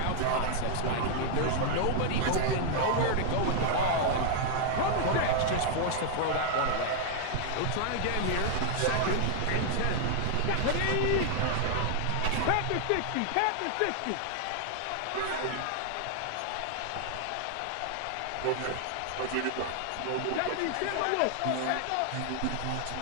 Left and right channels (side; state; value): both; different; correlation 0.00